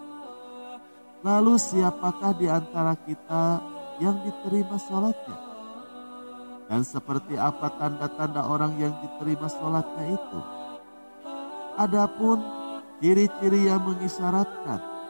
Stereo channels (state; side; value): inverted; both; correlation -1.00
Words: Lalu siapakah di antara kita yang diterima salatnya? Dan seperti apa tanda-tanda orang yang diterima salatnya itu? Adapun ciri-ciri yang mengisyaratkan